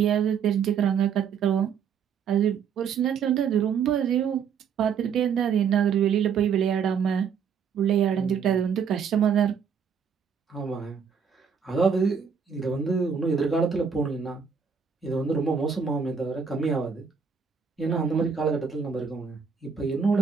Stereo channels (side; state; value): left; quieter; 6.7 dB